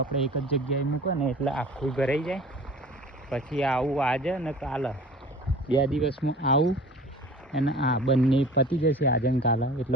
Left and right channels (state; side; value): normal; both; correlation 0.43